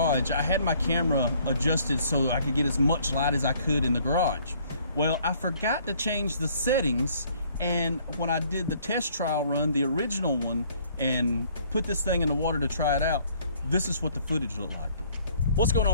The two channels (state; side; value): inverted; both; correlation -0.60